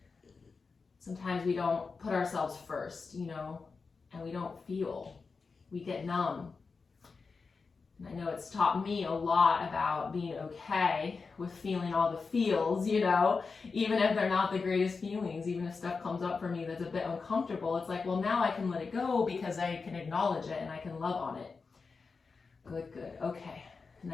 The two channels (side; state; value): right; quieter; 4.7 dB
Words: Sometimes we don't put ourselves first, you know, and we don't feel. We get numb. And I know it's taught me a lot about being okay with feeling all the feels, you know, even if they're not the greatest feelings, even if stuff comes up for me that's a bit uncomfortable, it's like, well, now I can let it go because I can acknowledge it and I can love on it. Good, good, okay. And